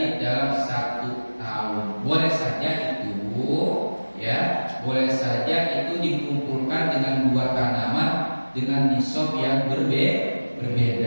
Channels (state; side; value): inverted; both; correlation -1.00